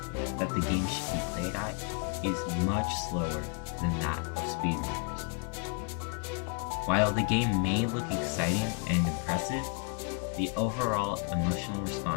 that the game should be played at is much slower than that of speedrunners. While the game may look exciting and impressive, the overall emotional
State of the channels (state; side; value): quieter; right; 37.0 dB